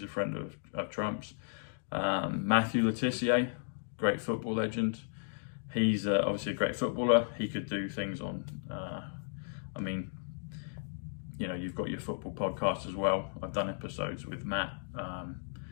a friend of Trump's. Matthew Letitia, great football legend. He's obviously a great footballer. He could do things on, I mean, you know, you've got your football podcast as well. I've done episodes with Matt.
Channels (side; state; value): right; silent; digital silence